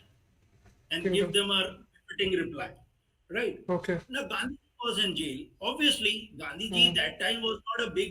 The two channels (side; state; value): both; identical; correlation 1.00